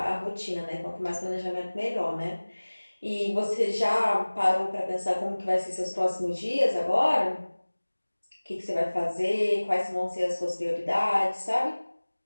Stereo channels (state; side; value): inverted; both; correlation -1.00